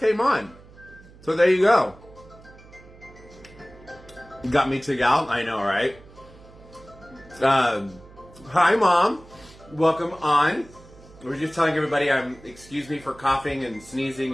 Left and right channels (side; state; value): right; noise; hum, 22 dB below the sound